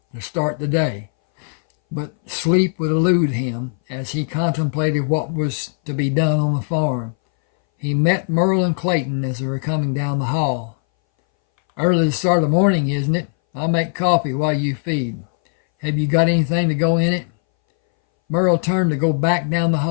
to start the day, but sleep would elude him as he contemplated what was to be done on the farm. He met Merle and Clayton as they were coming down the hall. "Early to start the morning, isn't it? I'll make coffee while you feed. Have you got anything to go in it?" Merle turned to go back down the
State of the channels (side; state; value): right; silent; 62 dB below the other